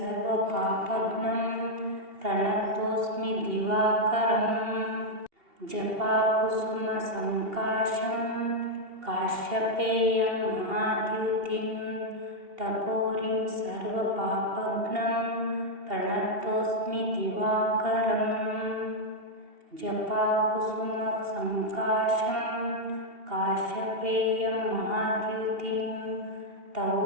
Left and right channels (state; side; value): late; left; 2.8 ms